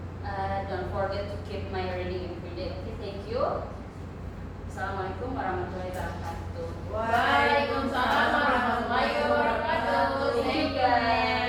Don't forget to keep my reading every day. Okay, thank you. Assalamualaikum warahmatullahi wabarakatuh. Waalaikumsalam warahmatullahi wabarakatuh. Thank you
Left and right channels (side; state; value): both; identical; correlation 1.00